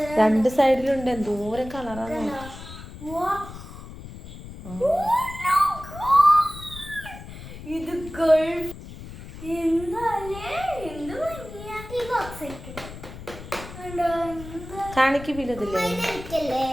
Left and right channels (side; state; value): left; noise; rumble, 13 dB below the sound